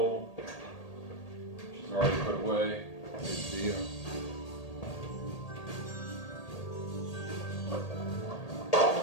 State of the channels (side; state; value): right; late; 1.8 ms